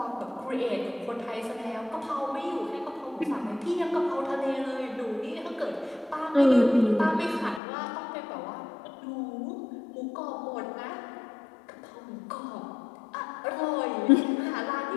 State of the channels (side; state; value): right; drops out; at 7.6 s